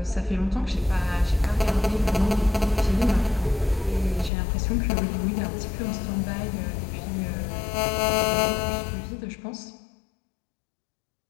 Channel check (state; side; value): drops out; right; at 4.3 s